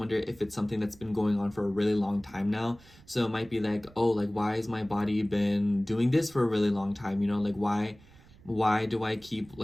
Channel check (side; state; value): right; noise; rumble, 25 dB below the sound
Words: if it's something that's been going on for a really long time now. So it might be like, oh, like, why has my body been doing this for a really long time? Like, why